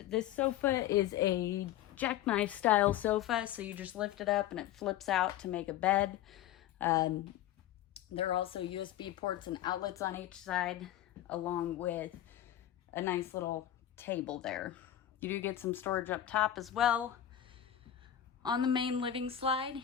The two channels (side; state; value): right; quieter; 11.7 dB